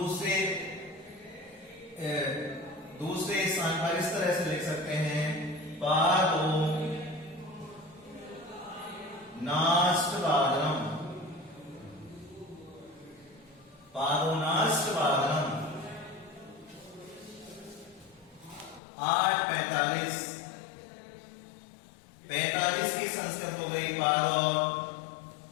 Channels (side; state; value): right; drops out; at 18.8 s